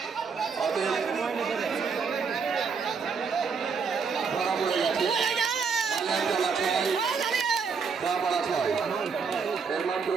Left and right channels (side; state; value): left; quieter; 5.5 dB